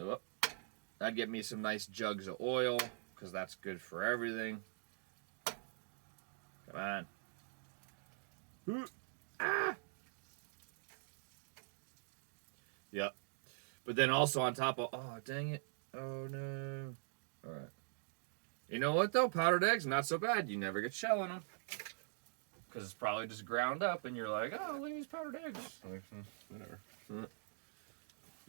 I'd get me some nice jugs of oil, because that's good for everything. Come on. Ah! Yep. But then also on top of, oh, dang it. Oh, no. All right. You know what, though? Powdered eggs, not so bad. You never get shell in them. Because it's probably just ground up, and you're like, oh, look at these powdered eggs. Like, whatever.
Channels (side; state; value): left; silent; digital silence